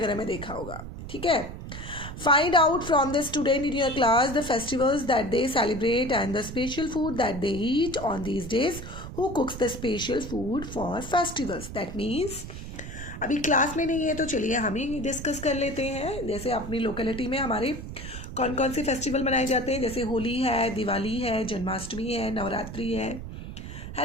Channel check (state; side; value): noise; right; rumble, 10 dB below the sound